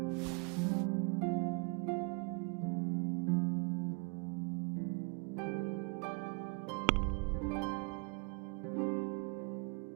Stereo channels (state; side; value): quieter; left; 32.6 dB